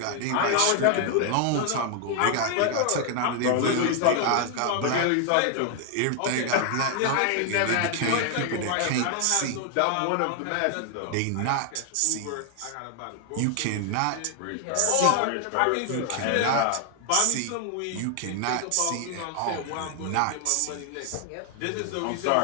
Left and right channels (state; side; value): different; both; correlation 0.00